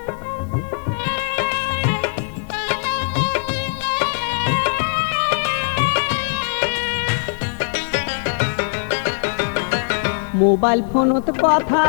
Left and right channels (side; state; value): right; silent; 57 dB below the other